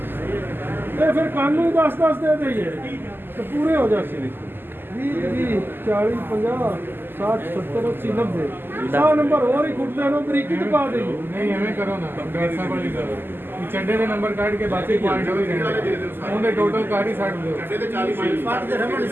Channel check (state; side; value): late; left; 0.097 ms